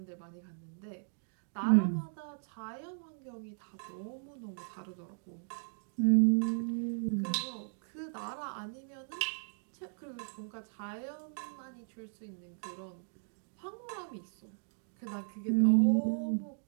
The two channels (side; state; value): left; silent; digital silence